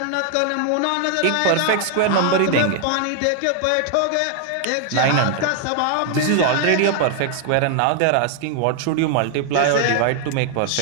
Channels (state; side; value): different; both; correlation 0.00